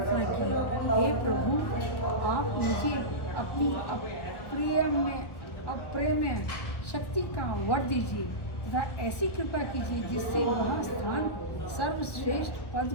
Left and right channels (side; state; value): right; late; 1.4 ms